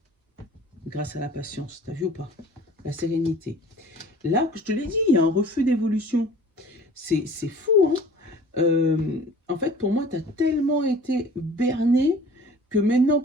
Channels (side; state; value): both; normal; correlation 0.47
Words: Grâce à la patience. T'as vu ou pas? La sérénité. Là, je te l'ai dit, il y a un refus d'évolution. C'est fou, hein? En fait, pour moi, tu as tellement été berné que maintenant